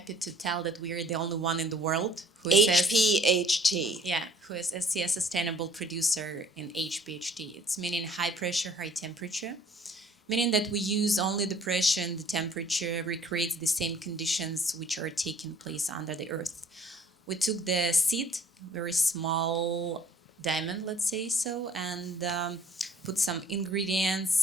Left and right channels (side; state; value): both; normal; correlation 0.55